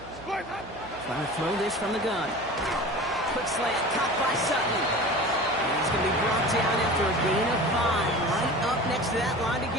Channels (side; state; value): right; noise; hum, 19 dB below the sound